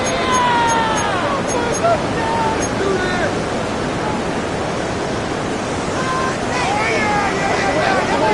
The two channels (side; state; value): both; identical; correlation 1.00